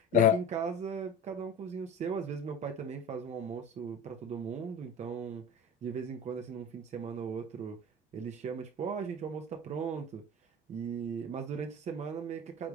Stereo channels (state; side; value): normal; both; correlation 0.33